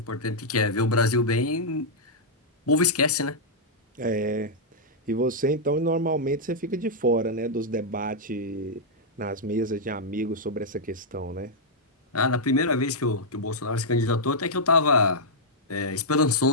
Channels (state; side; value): normal; both; correlation -0.07